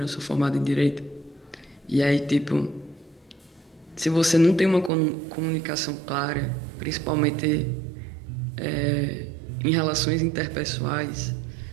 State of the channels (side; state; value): left; drops out; at 4.9 s